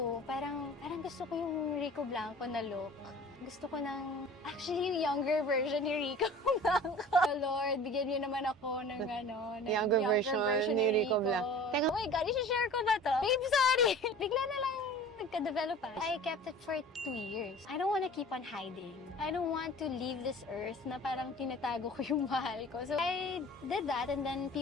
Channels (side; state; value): both; normal; correlation 0.42